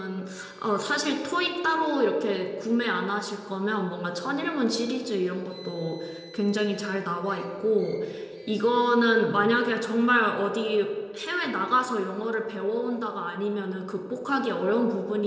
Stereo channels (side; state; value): both; identical; correlation 1.00